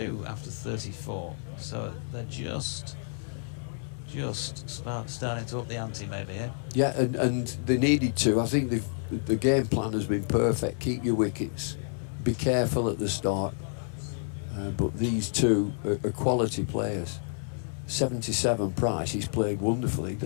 after 34. So they're just starting to up the ante maybe here. Yeah, and they needed to. I think the game plan has been perfect. Keep your wickets, be careful at the start. But these 2 are quality players. 77 Price, he's played wonderfully.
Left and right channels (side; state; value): right; silent; 58 dB below the other